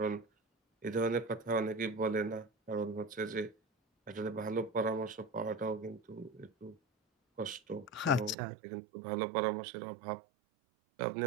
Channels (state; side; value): drops out; left; at 8.3 s